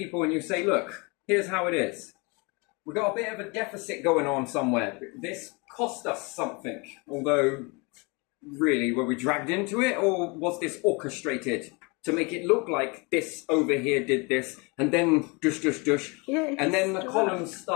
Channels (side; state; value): right; quieter; 29.2 dB